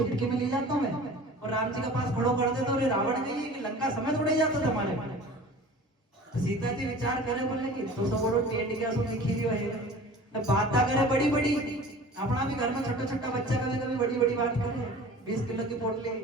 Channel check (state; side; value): normal; both; correlation 0.42